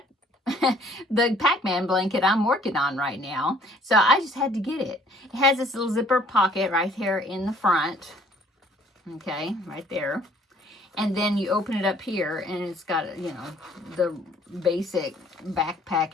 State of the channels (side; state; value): both; normal; correlation 0.59